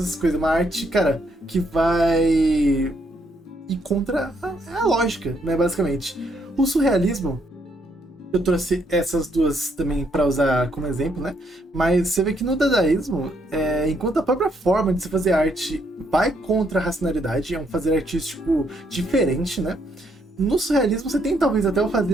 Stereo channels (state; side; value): normal; both; correlation 0.73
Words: coisas. Uma arte, cara, que vai ir contra a lógica, né, basicamente. O surrealismo, eu trouxe essas duas também para usar como exemplo, né? Mas você vê que no dadaísmo, enquanto a própria forma de se fazer arte vai contra a racionalidade, é um fazer artístico diferente, né? No surrealismo você tem talvez até o